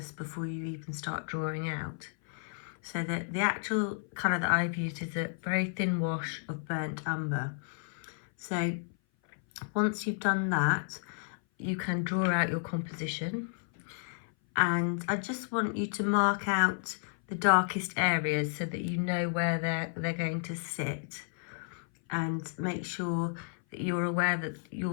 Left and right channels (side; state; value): right; silent; 56 dB below the other